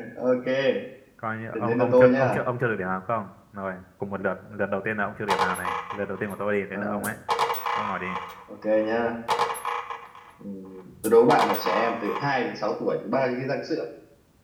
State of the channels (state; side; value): identical; both; correlation 1.00